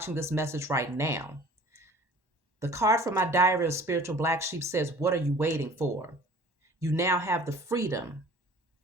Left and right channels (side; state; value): left; late; 1.1 ms